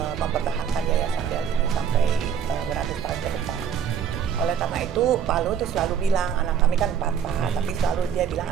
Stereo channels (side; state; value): left; quieter; 8.0 dB